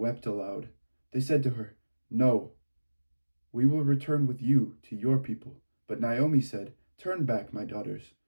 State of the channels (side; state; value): both; inverted; correlation -1.00